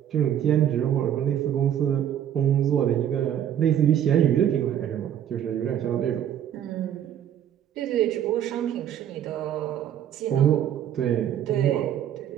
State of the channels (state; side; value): quieter; left; 10.2 dB